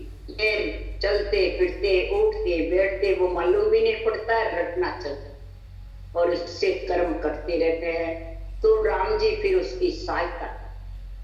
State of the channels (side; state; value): both; identical; correlation 1.00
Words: ये चलते फिरते उठते बैठते वो मालूम भी नहीं पड़ता, रटना चलता और इससे कर्म करते रहते हैं। तो राम जी फिर उसकी सहायता।